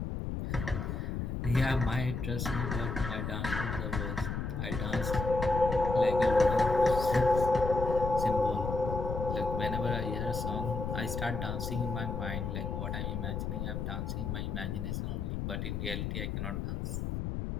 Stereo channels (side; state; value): left; noise; rumble, 3 dB below the sound